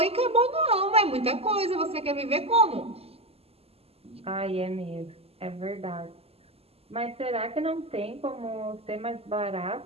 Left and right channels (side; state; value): left; late; 0.29 ms